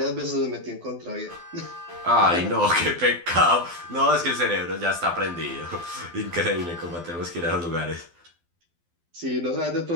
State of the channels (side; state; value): left; late; 12 ms